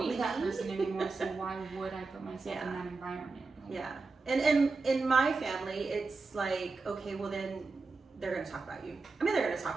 that person anymore. So why would I put myself in that environment? Like, and in my family, it's like, okay, well then they're going to talk about you. I mean, they're going to talk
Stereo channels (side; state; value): left; quieter; 4.0 dB